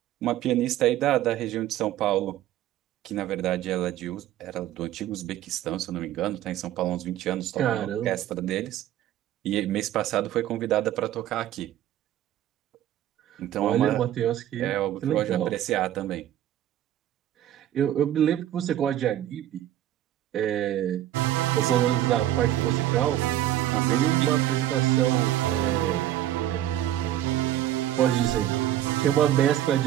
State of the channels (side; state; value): left; quieter; 12.6 dB